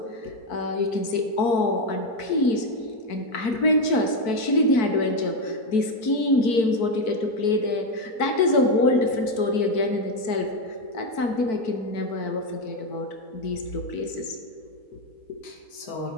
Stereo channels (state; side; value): late; right; 4.5 ms